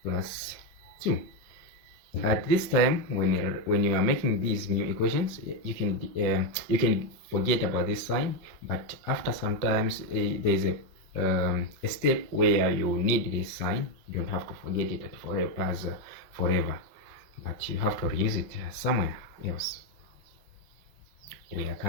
plus 2. At this time, when you are making these new equations, you can forget about this sign, but after sometimes there is a step where you need this sign. You don't have to forget it forever, but you have to reuse it somewhere else. We are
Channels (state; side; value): late; left; 5.4 ms